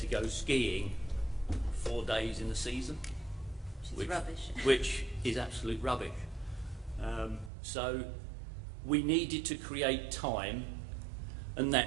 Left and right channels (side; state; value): left; drops out; at 7.5 s